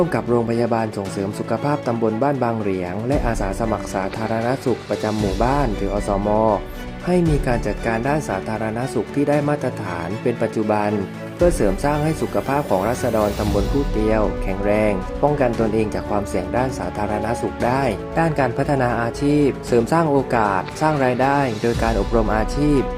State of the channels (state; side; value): identical; both; correlation 1.00